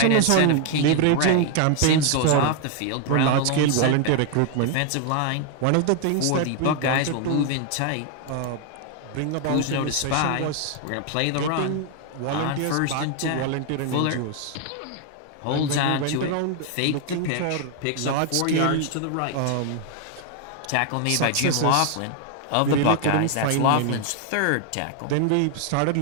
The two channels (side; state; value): both; different; correlation 0.00